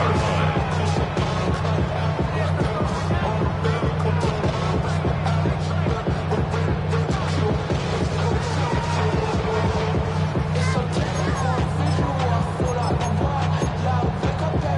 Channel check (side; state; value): both; identical; correlation 1.00